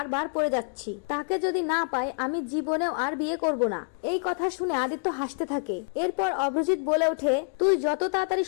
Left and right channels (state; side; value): silent; right; digital silence